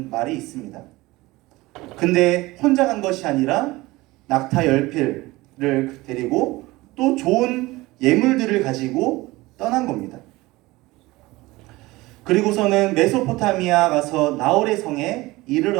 말이 있습니다. 근데 혼자 간 것이 아니라 낙타 10필을 데리고 또 좋은 예물들을 가지고 떠난 겁니다. 그리고서는 메소포타미아 가서 나홀의 성에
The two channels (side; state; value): left; quieter; 20.2 dB